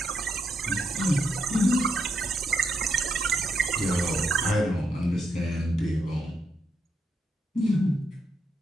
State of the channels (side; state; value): both; normal; correlation 0.79